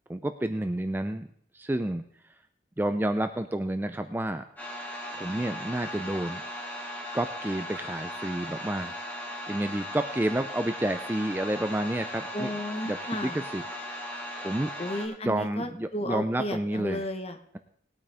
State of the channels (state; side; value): normal; both; correlation 0.79